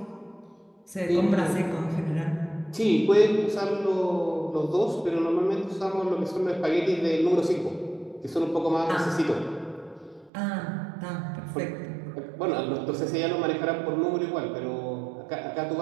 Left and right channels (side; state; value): left; drops out; at 10.3 s